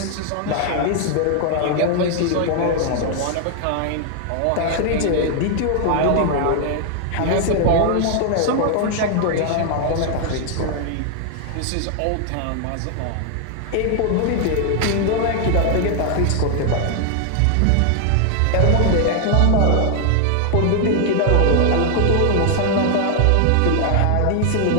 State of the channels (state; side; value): different; both; correlation 0.00